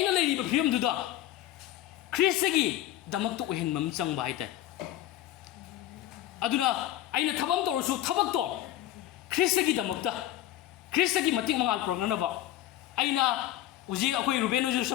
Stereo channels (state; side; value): quieter; right; 13.6 dB